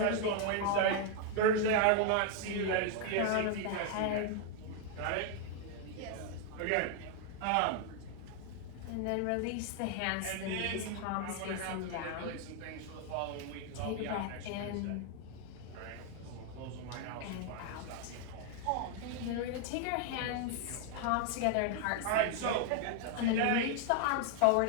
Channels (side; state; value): both; different; correlation 0.00